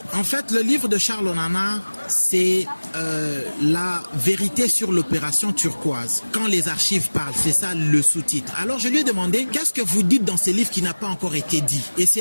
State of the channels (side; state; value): both; inverted; correlation -1.00